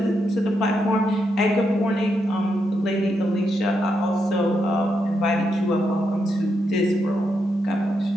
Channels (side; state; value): both; normal; correlation 0.82